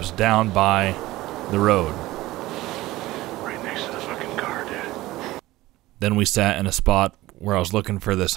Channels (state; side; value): quieter; left; 17.7 dB